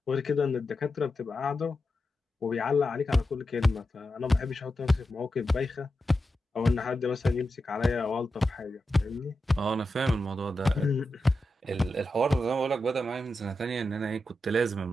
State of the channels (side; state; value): both; normal; correlation 0.90